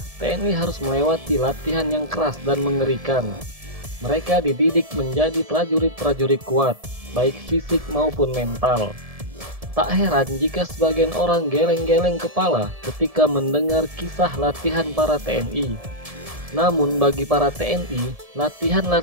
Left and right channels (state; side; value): late; left; 1.7 ms